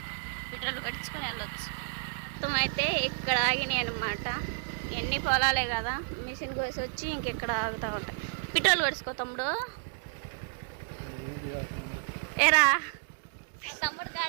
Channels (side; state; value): left; silent; digital silence